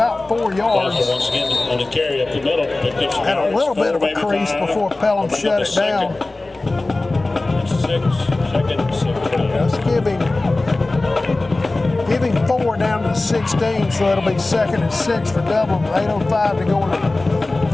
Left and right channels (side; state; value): right; quieter; 3.1 dB